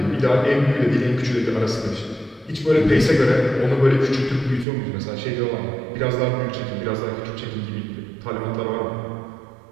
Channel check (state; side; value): drops out; left; at 4.7 s